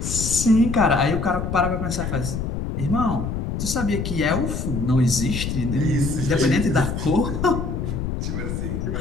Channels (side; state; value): left; noise; rumble, 3 dB below the sound